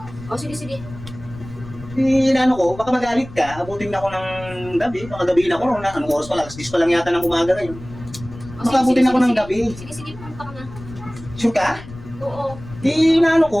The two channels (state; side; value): noise; left; rumble, 15 dB below the sound